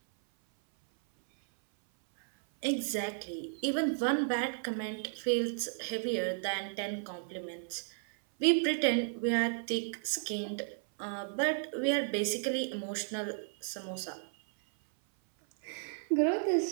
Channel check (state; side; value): silent; left; 55 dB below the other